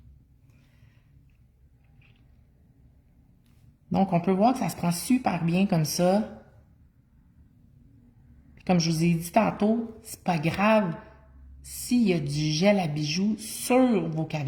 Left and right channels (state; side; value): identical; both; correlation 1.00